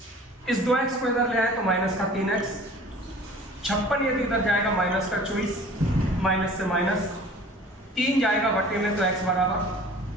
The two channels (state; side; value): normal; both; correlation 0.46